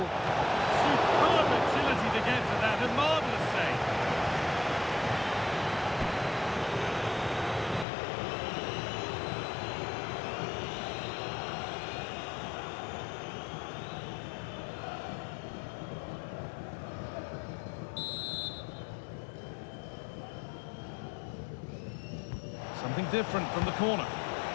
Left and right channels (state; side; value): drops out; right; at 7.9 s